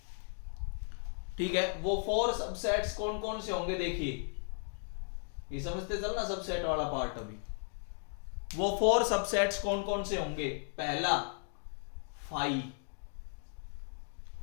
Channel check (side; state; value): right; silent; 54 dB below the other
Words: ठीक है। वो 4 सबसेट्स कौन कौन से होंगे? देखिए, ये समझते चलना सबसेट वाला पार्ट। अभी वो 4 सबसेट्स कौन कौन से होंगे? पहला 5,